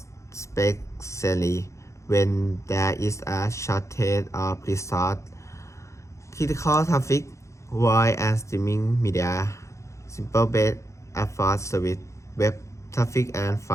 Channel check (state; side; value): late; right; 0.14 ms